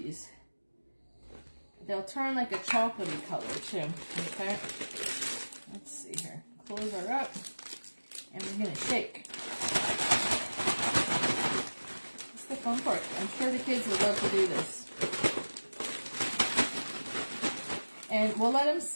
They'll turn like a chocolatey color too. Okay, let's see here. Close her up. And we're going to shake. That's the fun part. I'm sure the kids would love to do this. And we'll let them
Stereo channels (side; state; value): both; inverted; correlation -1.00